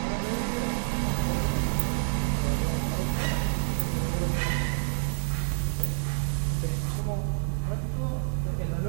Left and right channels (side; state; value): left; silent; digital silence